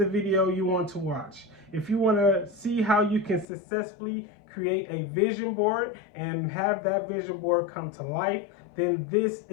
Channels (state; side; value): drops out; right; at 3.5 s